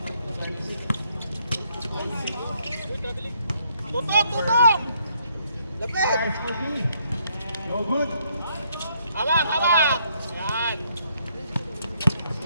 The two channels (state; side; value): inverted; both; correlation -0.71